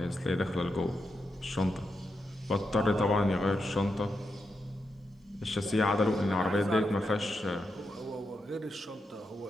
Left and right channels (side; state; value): both; normal; correlation 0.86